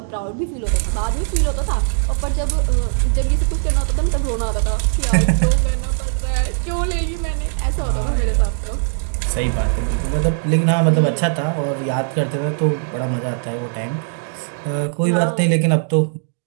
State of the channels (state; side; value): silent; left; digital silence